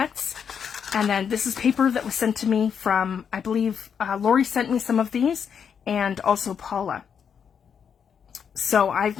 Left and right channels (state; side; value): quieter; right; 7.3 dB